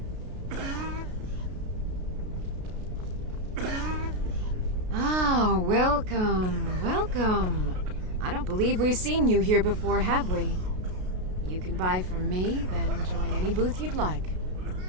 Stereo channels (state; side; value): late; left; 33 ms